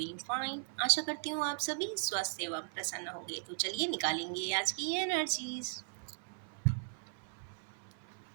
fine. आशा करती हूँ आप सभी स्वस्थ एवं प्रसन्न होंगे। तो चलिए निकालेंगे आज की energies.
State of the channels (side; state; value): left; silent; 53 dB below the other